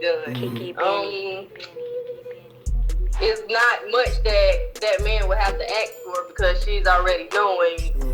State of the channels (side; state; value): both; identical; correlation 1.00